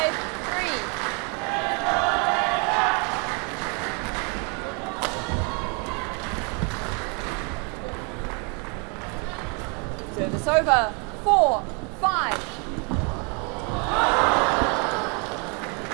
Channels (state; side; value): quieter; left; 34.5 dB